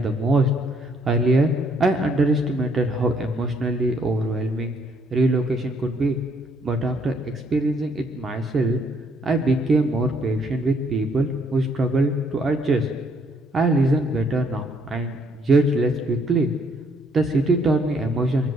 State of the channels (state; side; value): normal; both; correlation 0.68